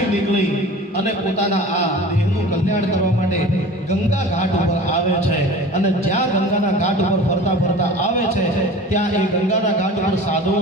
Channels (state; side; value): normal; both; correlation 0.39